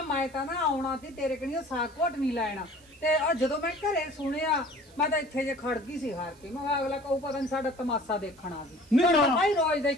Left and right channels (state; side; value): noise; right; hiss, 27 dB below the sound